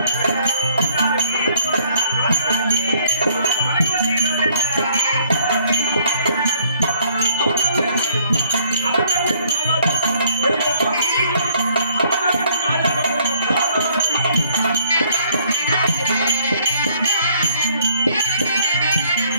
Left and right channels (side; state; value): both; inverted; correlation -0.63